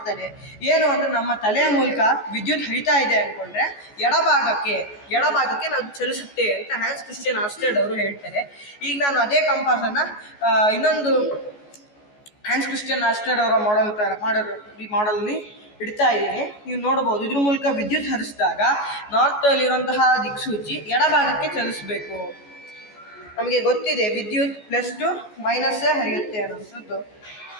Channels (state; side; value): late; right; 14 ms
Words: ಏನು ಅಂದರೆ ನಮ್ಮ ತಲೆಯ ಮೂಲಕ ವಿದ್ಯುತ್ ಹರಿತಾ ಇದೆ ಅಂದ್ಕೊಂಡ್ರೆ ಎಡಭಾಗಕ್ಕೆ ನಾವು ಚಲಿಸುತ್ತೆ ಅಂತ ಹಾನ್ಸ್ ಕ್ರಿಶ್ಚಿಯನ್ ಆರ್ಸ್ಟೆಡ್ ಅವರು ಹೇಳ್ತಾರೆ. ಈಗ ನಾನು ಅದೇ ಕಂಪಾಸನ್ನು ಇನ್ನೊಂದು ಹಾನ್ಸ್ ಕ್ರಿಶ್ಚಿಯನ್ ಆರ್ಸ್ಟೆಡ್ ಅವರ ಈ ಮಾಡೆಲ್ನಿ ಇಡ್ತಾ ಇದ್ದೀನಿ. ನೀವು ನೋಡ್ಬೋದು ಇದ್ರ ಮೂಲಕ ವಿದ್ಯುತ್ ಹರಿಸಿದಾಗ ನಾರ್ತಲ್ಲಿರುವಂತಹ ದಿಕ್ಸೂಚಿ ಎಡಭಾಗಕ್ಕೆ ಚಲಿಸಬೇಕು. ನಮಗೆ ಗೊತ್ತಿದೆ ವಿದ್ಯುತ್ ಪ್ಲಸ್ ಟು ಮೈನಸ್ಸೇ ಹರಿಯುತ್ತೆ ಅನ್ನೋಂಥದ್ದು.